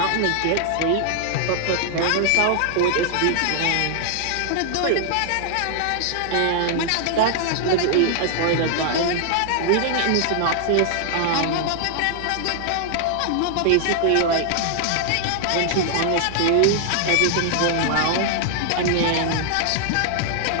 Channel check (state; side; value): different; both; correlation 0.00